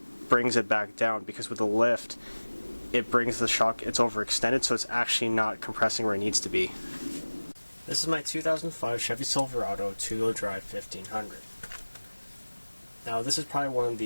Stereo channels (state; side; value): inverted; both; correlation -1.00